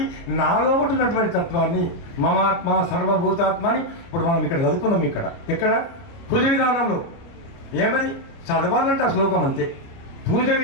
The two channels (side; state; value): right; late; 30 ms